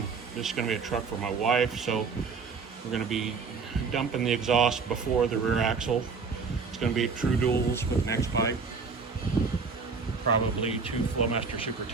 This is going to be a truck for my wife, so we're going to be dumping the exhaust before the rear axle. It's going to be true duals with next pipe, probably 2 Flowmaster Super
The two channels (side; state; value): left; quieter; 5.1 dB